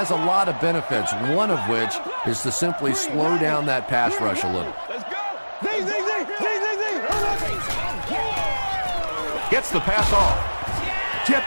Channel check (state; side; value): inverted; both; correlation -1.00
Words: a lot of benefits, one of which is to simply slow down that pass rush a little. Gets the pass off.